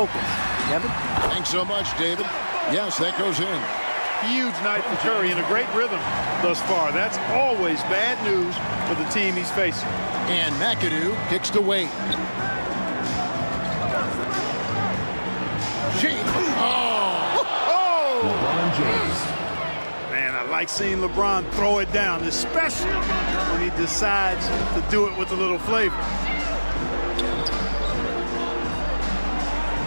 Devin? Thanks so much, David. Yes, that goes in. Huge night for Curry in a great rhythm thus far. That's always bad news for the team he's facing. And McAdoo kicks to Wade. James. Oh! LeBron James. like seeing LeBron throw it down, especially when he decides to do it with a little flavor.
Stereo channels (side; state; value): both; inverted; correlation -1.00